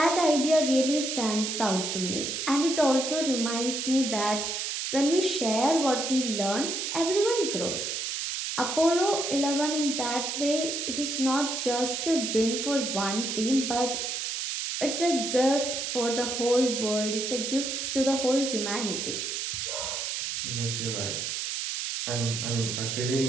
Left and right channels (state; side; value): noise; right; hiss, 3 dB below the sound